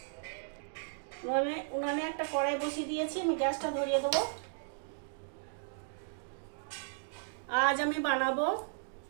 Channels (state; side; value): silent; left; digital silence